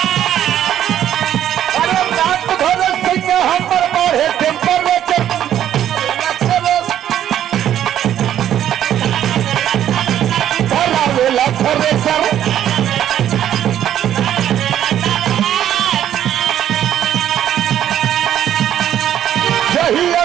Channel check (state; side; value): quieter; left; 10.9 dB